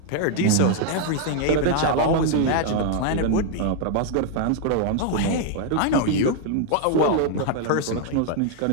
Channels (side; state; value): both; different; correlation 0.00